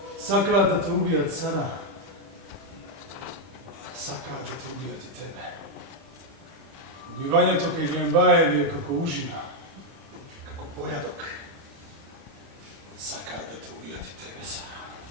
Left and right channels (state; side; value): late; left; 30 ms